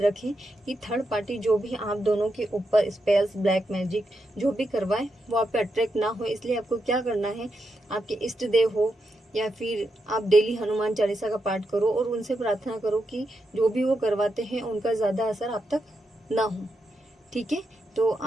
कि थर्ड पार्टी जो भी आप दोनों के ऊपर स्पेल्स ब्लैक मैजिक जो भी करवाए वो आप पे अट्रैक्ट ना हो। इसलिए आपको क्या करना है, आपके इष्ट देव हो या फिर आप डेली हनुमान चालीसा का पाठ करो और उनसे प्रार्थना करो कि जो भी वो करवाते हैं उनका ज्यादा असर आप तक ना हो, ठीक है। तो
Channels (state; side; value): normal; both; correlation 0.84